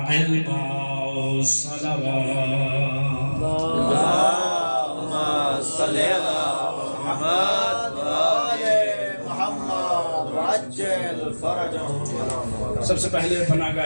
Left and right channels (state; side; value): inverted; both; correlation -1.00